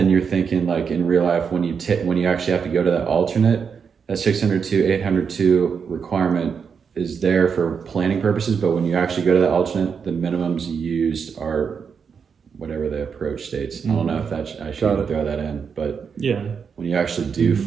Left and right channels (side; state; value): left; quieter; 6.3 dB